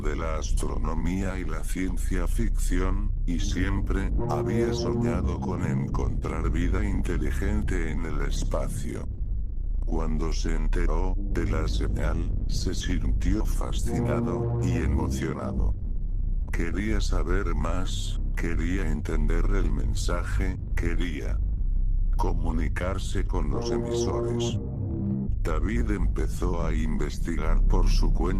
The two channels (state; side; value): identical; both; correlation 1.00